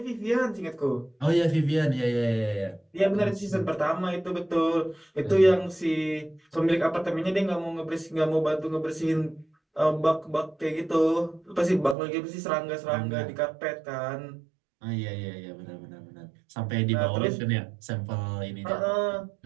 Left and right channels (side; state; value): left; drops out; at 12.0 s